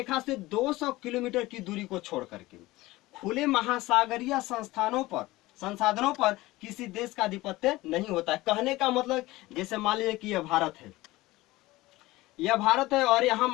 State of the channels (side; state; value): right; quieter; 19.0 dB